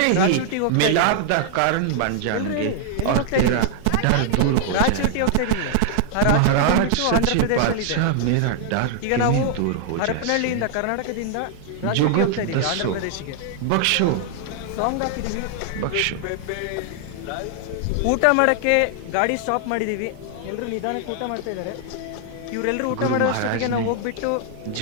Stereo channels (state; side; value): different; both; correlation 0.00